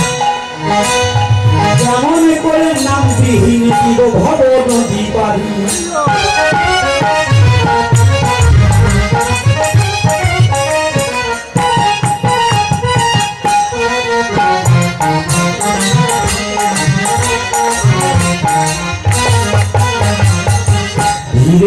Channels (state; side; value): identical; both; correlation 1.00